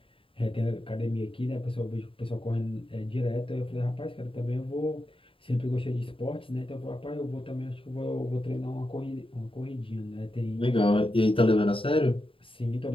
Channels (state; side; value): late; right; 0.26 ms